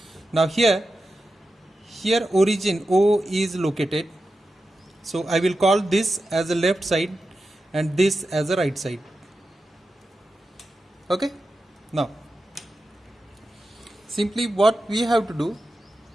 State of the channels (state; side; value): normal; both; correlation 0.91